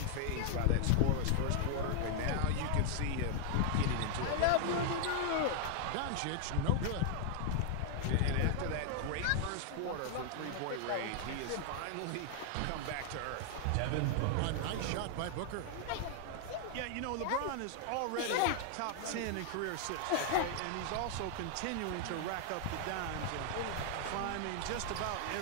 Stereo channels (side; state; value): both; different; correlation 0.00